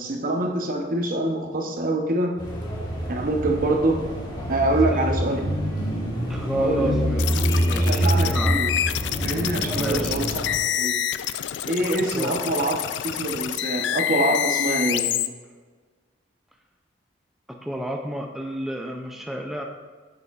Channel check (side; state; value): both; normal; correlation 0.48